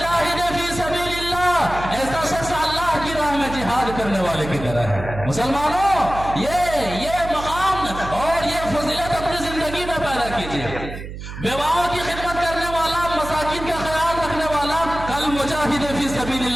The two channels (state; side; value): noise; right; hum, 10 dB below the sound